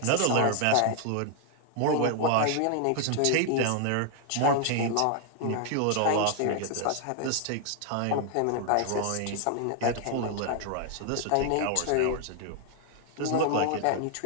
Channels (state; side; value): different; both; correlation 0.00